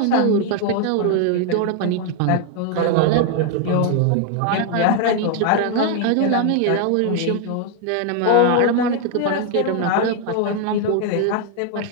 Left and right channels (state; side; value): different; both; correlation 0.01